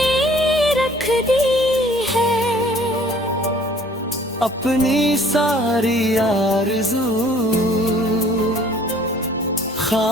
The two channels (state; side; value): normal; both; correlation 0.55